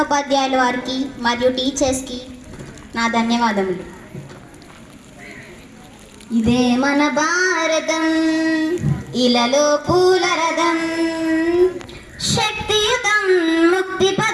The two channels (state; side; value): identical; both; correlation 1.00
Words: వారికి మరియు టీచర్స్కి నా ధన్యవాదములు. ఇదే మన భారతం, ఇలలో పూల రథం, శక్తియుతం ముక్తి